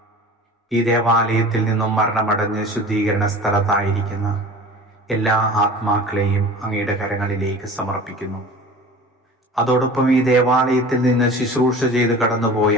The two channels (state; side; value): normal; both; correlation 0.40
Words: ഈ ദേവാലയത്തിൽ നിന്നും മരണമടഞ്ഞ് ശുദ്ധീകരണ സ്ഥലത്തായിരിക്കുന്ന എല്ലാ ആത്മാക്കളെയും അങ്ങയുടെ കരങ്ങളിലേക്ക് സമർപ്പിക്കുന്നു. അതോടൊപ്പം ഈ ദേവാലയത്തിൽ നിന്ന് ശുശ്രൂഷ ചെയ്ത്